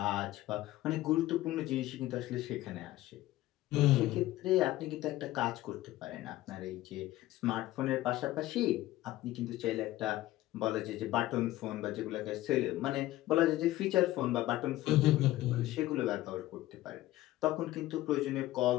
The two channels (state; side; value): quieter; right; 16.1 dB